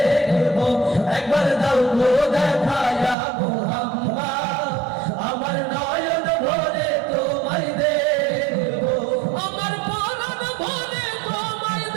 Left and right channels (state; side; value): drops out; left; at 3.2 s